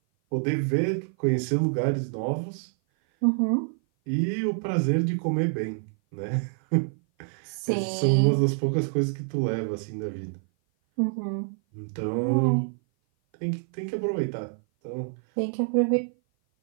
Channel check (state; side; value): silent; left; 56 dB below the other